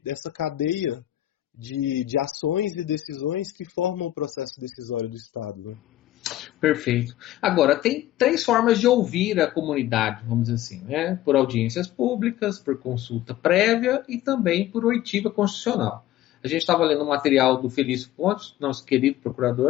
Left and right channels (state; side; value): quieter; right; 14.1 dB